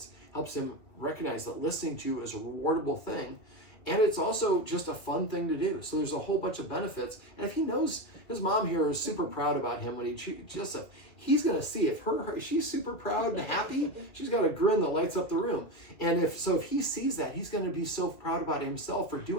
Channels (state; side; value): late; right; 2.3 ms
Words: helps him recognize that listening to you is a rewardable thing, And it's also just a fun thing to do. So there's a whole bunch of benefits. And if he knows his mom here is super proud about him when he treats Jessup, he's going to see if she's super proud and happy, she's got a grin that lights up the room. And if he sees that, he's going to be so proud about himself for